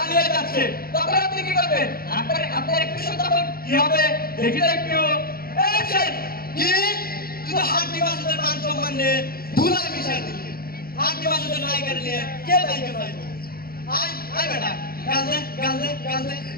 যাচ্ছে, তখন আপনি কি করবেন? আপনার একটু তখন কি হবে দেখি তো একটু। অ্যাকশন! কি তুই তো হাড্ডি মাসুদের মান সম্মান নিয়ে ধুলা মিশাই দিলি। হাড্ডি মাসুদের নায়িকার নিয়ে কে নায়িকা পাইব? আয় আয় বেটা, গাল দে।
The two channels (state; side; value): late; right; 0.43 ms